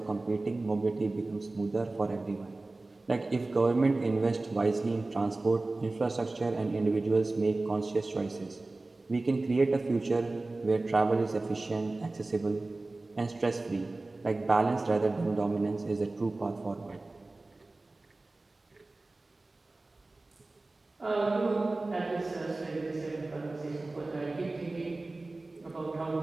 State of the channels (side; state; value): left; quieter; 3.1 dB